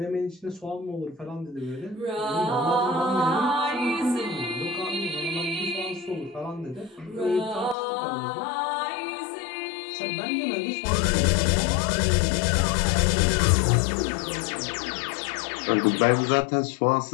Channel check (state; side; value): drops out; right; at 7.8 s